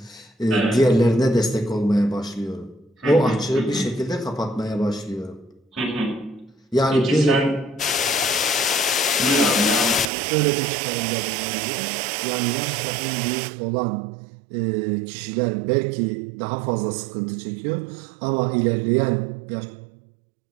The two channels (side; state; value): left; drops out; at 10.1 s